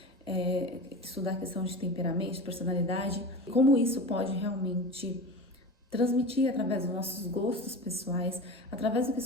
estudar a questão de temperamento, de personalidade, como isso pode realmente transmitir através dos nossos gostos pessoais, através do que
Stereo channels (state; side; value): normal; both; correlation 0.31